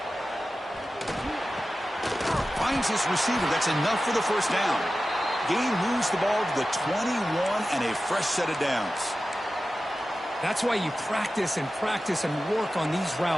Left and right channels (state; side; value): normal; both; correlation 0.94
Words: Finds his receiver. That's enough for the first down. Gain moves the ball to the 21 and a fresh set of downs. That's why you practice and work on these